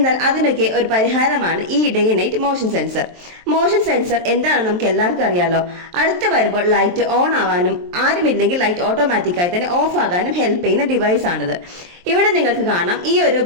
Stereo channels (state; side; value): late; left; 23 ms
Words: അതിനൊക്കെ ഒരു പരിഹാരമാണ് ഈ day night motion sensor. Motion sensor എന്താണെന്ന് നമുക്ക് എല്ലാവർക്കും അറിയാലോ. അടുത്ത് വരുമ്പോൾ ലൈറ്റ് ഓൺ ആവാനും ആരുമില്ലെങ്കിൽ ലൈറ്റ് ഓട്ടോമാറ്റിക് തന്നെ ഓഫ് ആകാനും ഹെൽപ്പ് ചെയ്യുന്ന ഡിവൈസ് ആണിത്. ഇവിടെ നിങ്ങൾക്ക് കാണാം, ഈ ഒരു